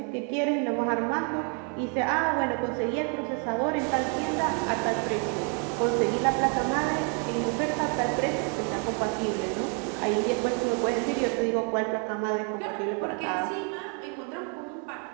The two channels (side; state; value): left; quieter; 38.0 dB